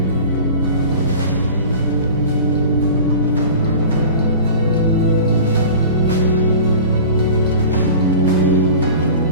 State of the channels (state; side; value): inverted; both; correlation -0.38